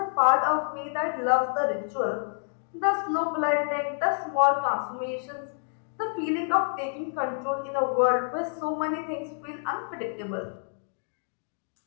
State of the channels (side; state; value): right; silent; digital silence